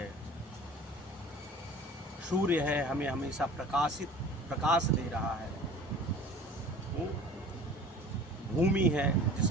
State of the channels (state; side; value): normal; both; correlation 0.44